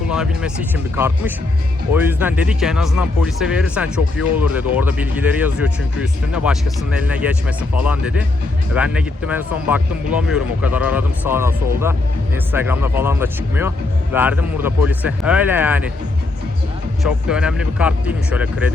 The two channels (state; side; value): quieter; right; 3.1 dB